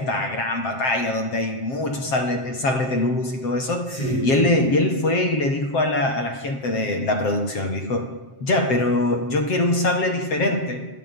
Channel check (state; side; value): late; right; 7.6 ms